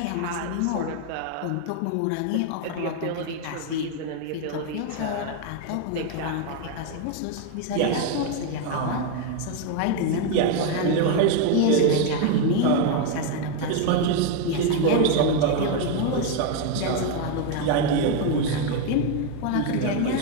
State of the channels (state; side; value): different; both; correlation 0.01